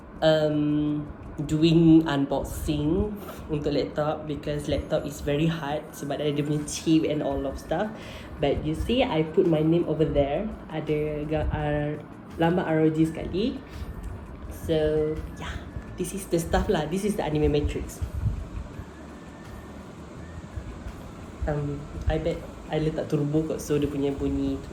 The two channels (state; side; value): identical; both; correlation 1.00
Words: doing unboxing untuk laptop because laptop is very hard sebab ada dia punya chip and all of stuff. But you see, I put my name over there. Ada lambang ROG sekali. So yeah, this is the stuff lah. This is the anime matrix. I bet I letak turbo kot, so dia punya bunyi